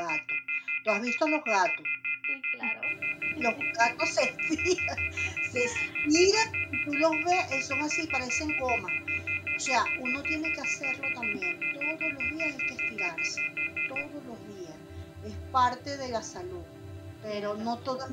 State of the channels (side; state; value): both; identical; correlation 1.00